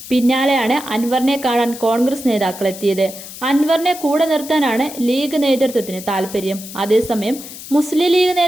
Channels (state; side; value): noise; left; hiss, 13 dB below the sound